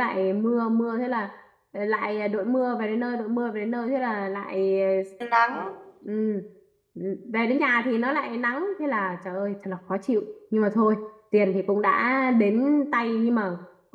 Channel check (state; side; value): identical; both; correlation 1.00